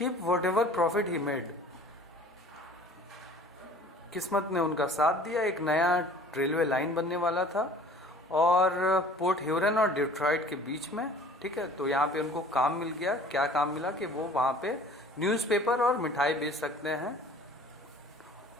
whatever profit he made. किस्मत ने उनका साथ दिया. एक नया रेलवे लाइन बनने वाला था और पोर्ट ह्यूरन और डिट्रॉइट के बीच में, ठीक है. तो यहाँ पे उनको काम मिल गया. क्या काम मिला कि वो वहाँ पे न्यूज़पेपर और मिठाई बेच सकते हैं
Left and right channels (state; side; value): normal; both; correlation 0.48